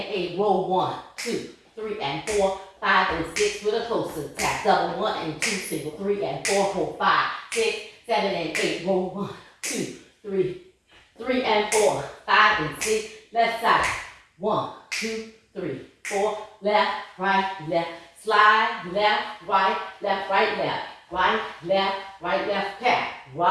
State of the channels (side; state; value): both; identical; correlation 1.00